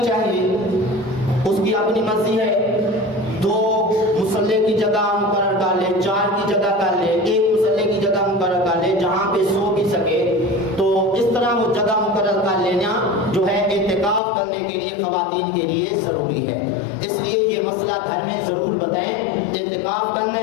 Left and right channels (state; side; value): drops out; right; at 14.2 s